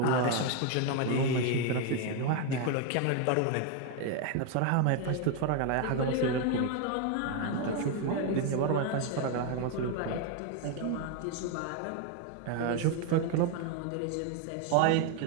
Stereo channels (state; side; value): different; both; correlation 0.01